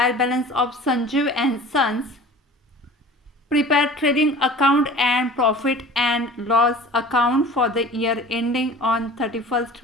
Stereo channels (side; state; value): both; normal; correlation 0.42